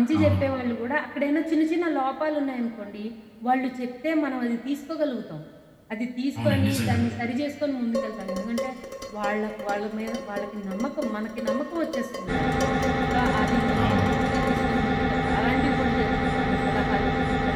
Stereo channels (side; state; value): both; identical; correlation 1.00